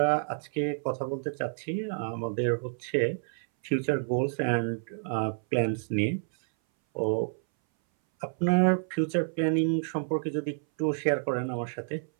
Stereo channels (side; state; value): left; silent; 58 dB below the other